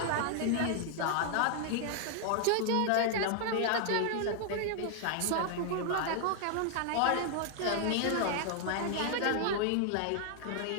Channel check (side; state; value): both; different; correlation 0.00